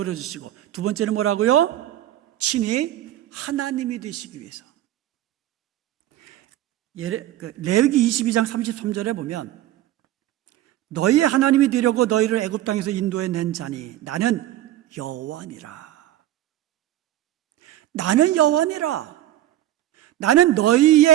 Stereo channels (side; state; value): left; quieter; 13.7 dB